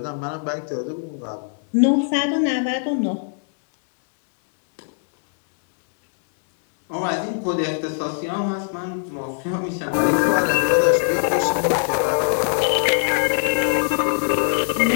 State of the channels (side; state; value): right; silent; digital silence